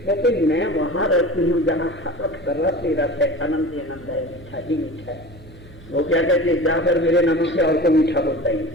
मैं वहां रहती हूँ जहाँ कर रहा तेरा है, आनंद ही आनंद है, मीठा ही मीठा है। वो क्या कहते जाकर मेरे नमक से और को मीठा बोलता ही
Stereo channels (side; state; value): both; normal; correlation 0.35